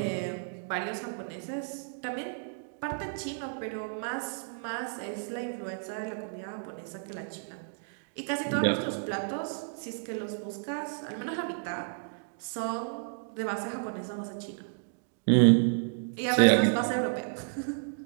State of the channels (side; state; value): left; silent; digital silence